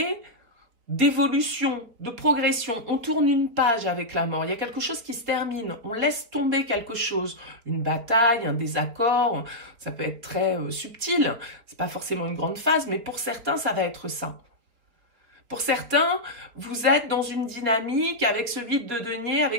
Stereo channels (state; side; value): late; left; 4.4 ms